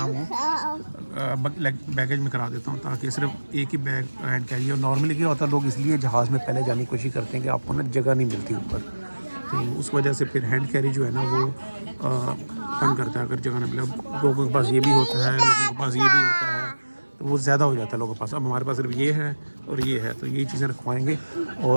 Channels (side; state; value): both; inverted; correlation -1.00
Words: वो बैगेज में करा देता हूँ, ताकि सिर्फ एक ही बैग हैंड कैरी हो। नॉर्मली क्या होता है, लोग इसलिए जहाज़ में पहले जाने की कोशिश करते हैं कि आपको ना जगह नहीं मिलती ऊपर, तो उस वजह से फिर हैंड कैरी जो है ना वो तंग करता है अगर जगह नहीं मिले। अब लोगों के पास ये भी होता है, लोगों के पास ये भी होता है, तो वो ज़्यादा हो जाता है लोगों के पास। अब हमारे पास सिर्फ ये है और ये है, तो यही चीज़ें रखवाएंगे